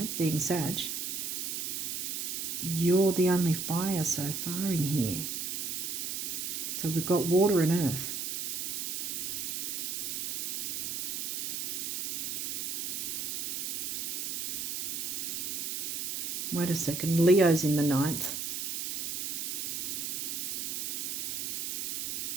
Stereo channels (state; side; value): noise; right; hiss, 2 dB below the sound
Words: being Sag, you're the only fire so far in here. So we've got water and earth. Wait a second, Leo's in the 9th.